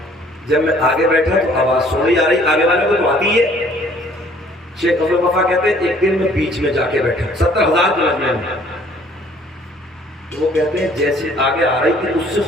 जब मैं आगे बैठा तो आवाज सुनी आ रही, आगे वाले को तो आती है। शेख अब्दुल वफा कहते हैं एक दिन मैं बीच में जाके बैठा 70,000 के मजमे में। तो वो कहते हैं जैसे आगे आ रही थी उससे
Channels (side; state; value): both; normal; correlation 0.57